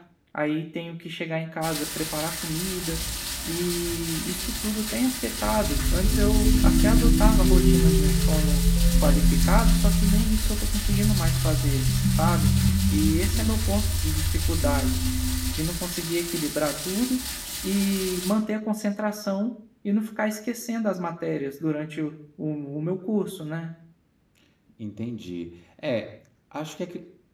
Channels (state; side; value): identical; both; correlation 1.00